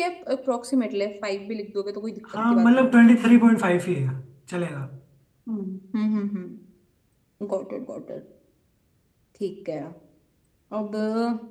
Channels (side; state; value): both; identical; correlation 1.00